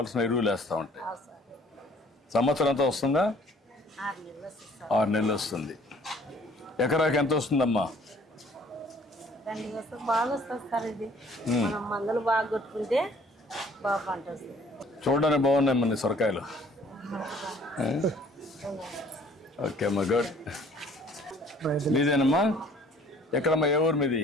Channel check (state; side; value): normal; both; correlation 0.56